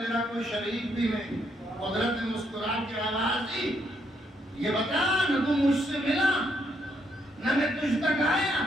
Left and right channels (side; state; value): both; normal; correlation 0.75